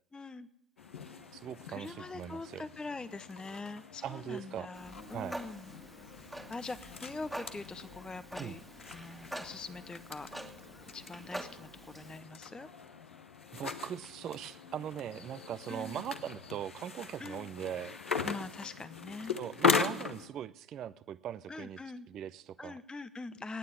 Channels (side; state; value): both; normal; correlation 0.43